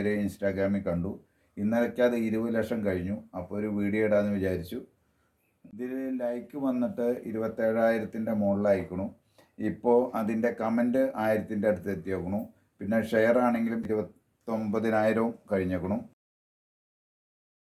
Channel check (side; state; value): both; identical; correlation 1.00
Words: ഇൻസ്റ്റാഗ്രാമിൽ കണ്ടു. ഇന്നലയ്ക്ക് അത് 20 ലക്ഷം കഴിഞ്ഞു. അപ്പോൾ ഒരു വീഡിയോ ഇടാമെന്ന് വിചാരിച്ചു. ഇതിൽ ലൈക്ക് വന്നിട്ട് 27,000-ൻ്റെ മുകളിലായിക്കണു. ഇപ്പോൾ അതിൻ്റെ കമൻറ്റ് 1000-ൻ്റെ അടുത്ത് എത്തിയേക്കണു. പിന്നെ ഷെയർ ആണെങ്കിലും 29,000 കഴിഞ്ഞേക്കണു.